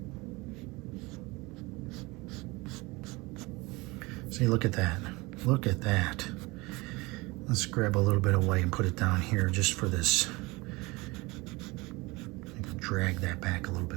See, look at that. Look at that. Let's grab a little bit of white and put it down here just for this. Drag that back a little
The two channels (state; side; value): quieter; left; 23.6 dB